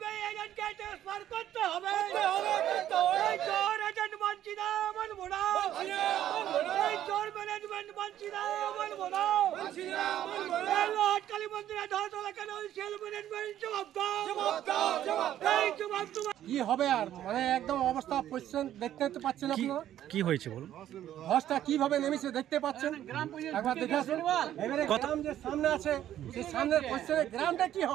কি হবে আর মানে একদম অবস্থা পজিশন দেখতে পাচ্ছেন আপনারা। কি হয়েছে বলুন? ধসটা কিভাবে নেমেছে দেখতে পাচ্ছেন, একবার দেখে আসুন। এবারে গ্রাম যে সামনে আছে সেই সামনের পজিশনে গ্রামটা কি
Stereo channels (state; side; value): quieter; left; 11.8 dB